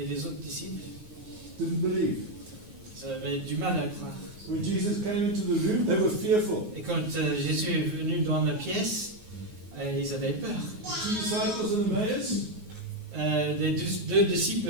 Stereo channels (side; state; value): left; late; 9.4 ms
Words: les autres disciples, didn't believe. ils avaient du mal à croire. When Jesus came into the room, they were fearful. Et quand Jésus est venu dans la pièce, ils avaient peur. Two disciples in Emmaus, Les deux